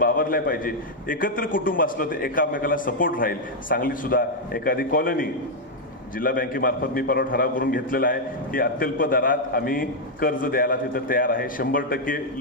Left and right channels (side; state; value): both; normal; correlation -0.01